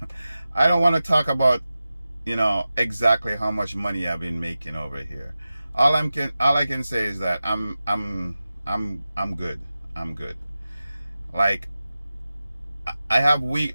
I don't want to talk about exactly how much money I've been making over here. All I can say is that I'm good. I'm good. Like, I have week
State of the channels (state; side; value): inverted; both; correlation -0.94